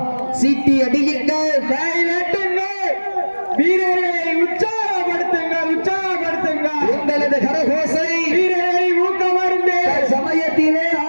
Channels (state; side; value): inverted; both; correlation -1.00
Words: சீட்டி அடியுங்கள், கை நட்டுங்கள், வீரர்களை உற்சாகப்படுத்துங்கள், உற்சாகப்படுத்துங்கள். உங்களது கரகோசை வீரர்களை ஊக்கமருந்து சமயத்திலே